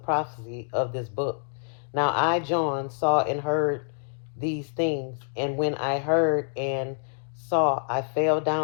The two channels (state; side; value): silent; right; digital silence